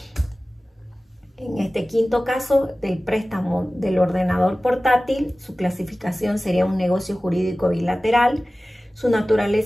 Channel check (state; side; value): normal; both; correlation 0.97